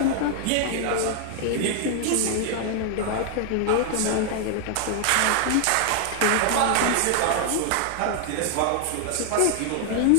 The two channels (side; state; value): both; different; correlation 0.00